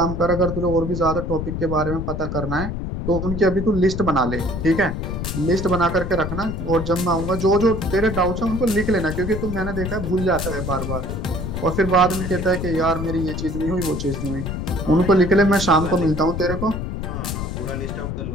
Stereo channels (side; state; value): left; noise; rumble, 4 dB below the sound